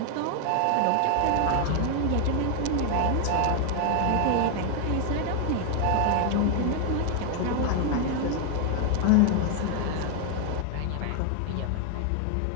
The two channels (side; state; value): both; different; correlation 0.00